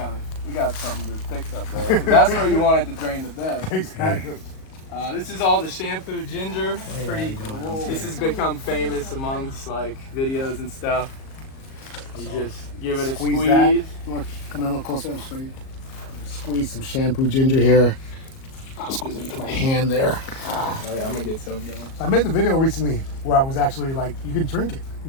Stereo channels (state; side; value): late; right; 37 ms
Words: something to fix up there. 'Cause that's where you want it to drain the best. Exactly. This is all the shampoo ginger. Pretty. This has become famous amongst like videos and stuff. You just give it a Squeeze squeeze. that. You want to come in a little closer? I'll show you. Squeeze some shampoo ginger here. I'll squeeze it into my hand there. Oh yeah, I'm gonna get some. I made the video recently where I was actually like, you can drink it.